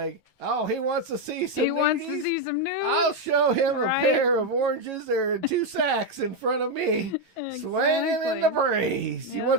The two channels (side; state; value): left; late; 9.2 ms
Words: oh, he wants to see some nudies? Wants to see some nudes? I'll show him a pair of oranges. They're in 2 sacks in front of me, swinging in the breeze. Yep. He